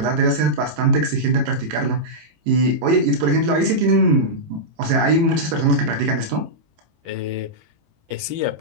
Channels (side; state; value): left; late; 18 ms